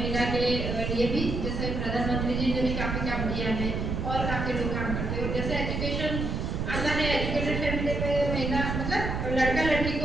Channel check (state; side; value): noise; right; rumble, 2 dB below the sound